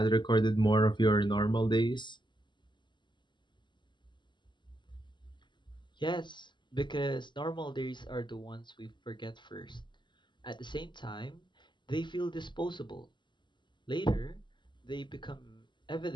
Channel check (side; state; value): right; late; 0.22 ms